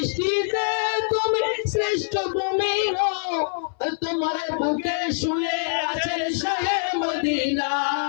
তুমি শ্রেষ্ঠ ভূমি হও। তোমার বুকে শুয়ে আছেন শাহে মদিনা,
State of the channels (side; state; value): right; silent; 60 dB below the other